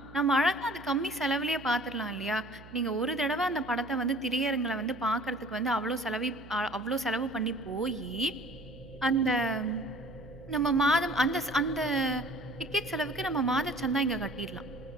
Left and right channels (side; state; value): right; noise; hum, 19 dB below the sound